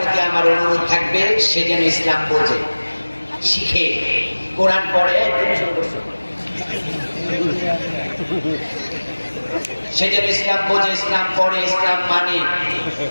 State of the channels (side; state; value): both; inverted; correlation -1.00